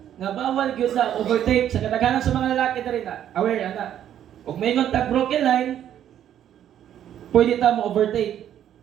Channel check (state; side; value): quieter; left; 10.5 dB